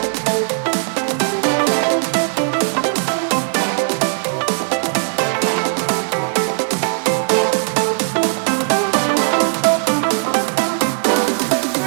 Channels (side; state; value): left; silent; 67 dB below the other